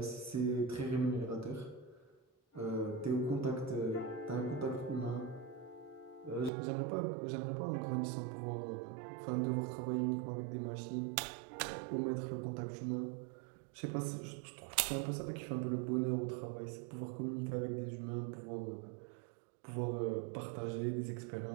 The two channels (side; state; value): left; drops out; at 6.5 s